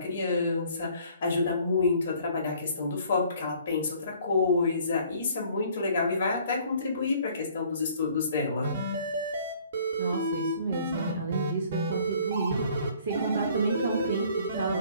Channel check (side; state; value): both; inverted; correlation -0.57